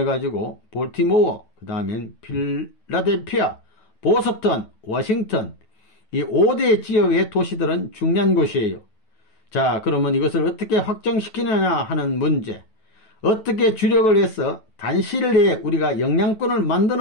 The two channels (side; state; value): right; late; 9.2 ms